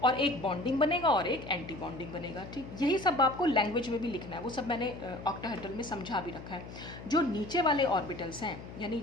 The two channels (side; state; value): left; noise; hum, 13 dB below the sound